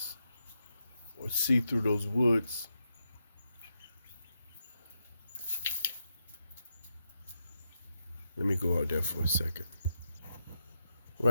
or see through those woods. Let me go out there for a second.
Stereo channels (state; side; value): inverted; both; correlation -0.84